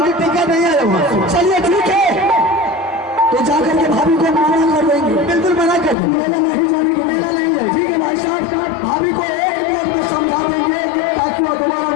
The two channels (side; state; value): right; drops out; at 6.0 s